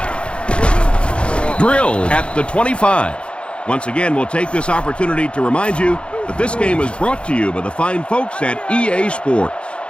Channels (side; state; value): right; late; 0.057 ms